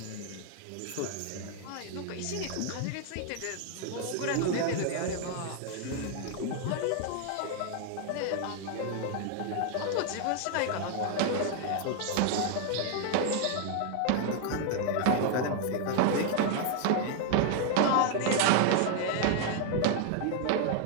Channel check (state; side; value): different; both; correlation 0.00